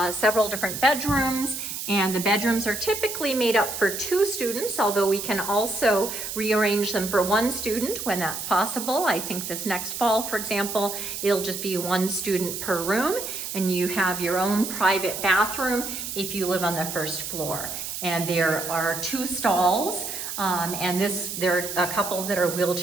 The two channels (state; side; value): noise; right; hiss, 6 dB below the sound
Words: several different bedrooms, and the bedrooms are typically made up for 2 students, although we can also rearrange them for 1 student when that's possible. I think this next fall, for example, it'll just be 1 student per room, and you have your own private bathroom if you live on the first floor. And there are 2 stalls, and there are a couple that are